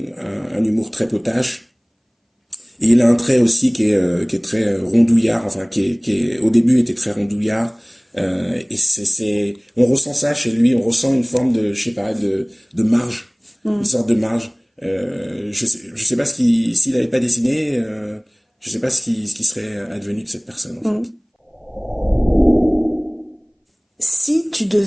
humour très potache. Et il a un trait aussi qui est très rondouillard, enfin qui au début était très rondouillard. Et on ressent ça chez lui, on ressent une forme de, je sais pas, de marge, une sorte de marge. Je sais pas s'il avait pas dessiné, je sais pas ce qui serait advenu de cette personne, en fait. Si tu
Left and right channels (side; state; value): both; identical; correlation 1.00